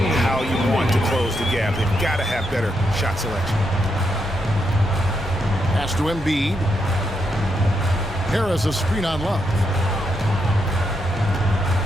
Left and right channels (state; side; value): normal; both; correlation 0.81